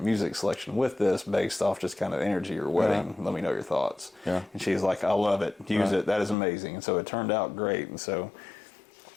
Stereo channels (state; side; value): drops out; right; at 6.4 s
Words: music selection with this based off just kind of energy or wedding. Let me know your thoughts. And she's like, I love it. Use it. That is amazing. And so it turned out great. And so